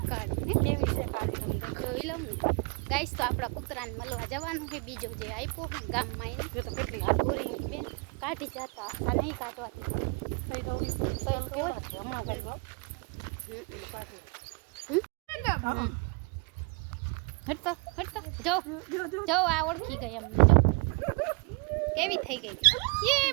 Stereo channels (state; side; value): quieter; left; 30.4 dB